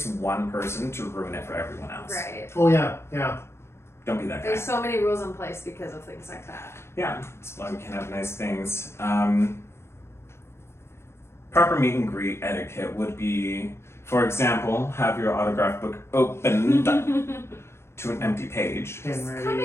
one person to ruin it for everyone else. Right. Oh yeah. Don't be that guy. There's so many rules in place because of things like that. Yeah, that's why we can have nice things. Proper meet and greet etiquette would be, for example, have your autograph book opened to an empty page. Pen Just come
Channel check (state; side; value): late; right; 0.12 ms